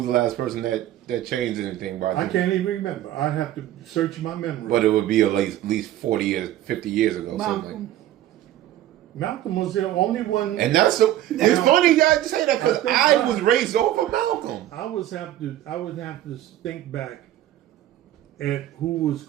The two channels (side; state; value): left; quieter; 13.2 dB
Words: the last person that changed anything by I can't even remember. I'd have to search my memory. But it would be at least 40 years, 50 years ago. Something. Malcolm was the only one. And that's so. It's funny you guys say that because I think I was raised over Malcolm. I would have to think back at who was